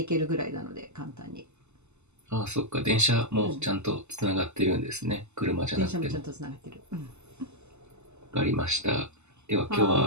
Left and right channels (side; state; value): left; late; 0.82 ms